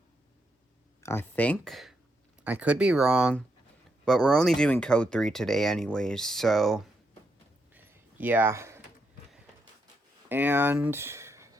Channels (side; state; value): both; normal; correlation 0.80